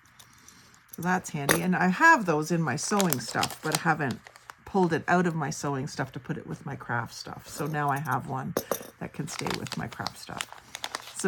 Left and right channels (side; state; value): both; identical; correlation 1.00